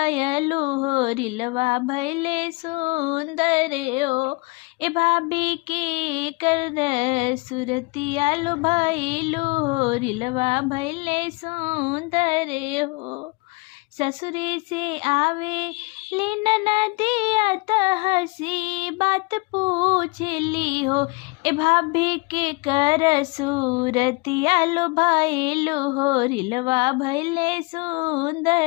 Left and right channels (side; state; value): right; quieter; 26.9 dB